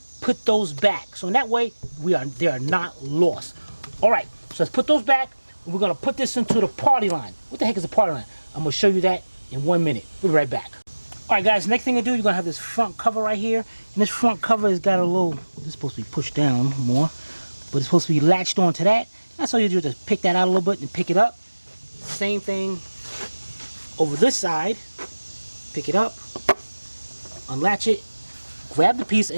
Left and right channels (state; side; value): inverted; both; correlation -1.00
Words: put those back. So in that way, they are not lost. All right, so let's put those back. We're gonna put this into the party line. What the heck is a party line? I'm gonna show you that in 1 minute. We'll be right back. All right, guys, next thing to do, you're gonna have this front cover right here. And this front cover has got a little, this is supposed to be pushed down more, but it's supposed to be latched onto that. That's all you do, just pick that out a little bit and pick it up. Same thing over this side. Pick it up, unlatch it, grab the piece,